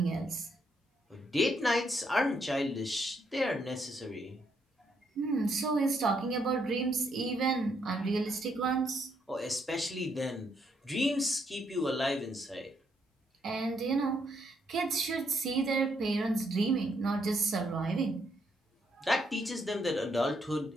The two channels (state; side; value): normal; both; correlation 0.75